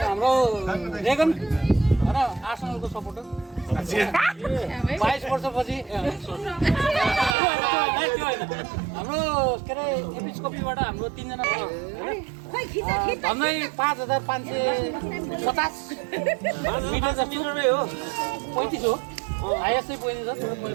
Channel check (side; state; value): left; drops out; at 7.4 s